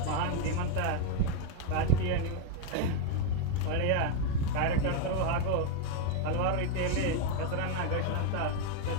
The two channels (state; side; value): different; both; correlation 0.01